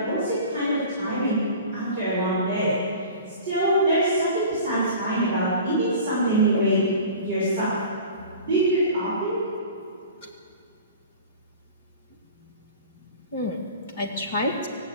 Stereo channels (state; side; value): inverted; both; correlation -0.40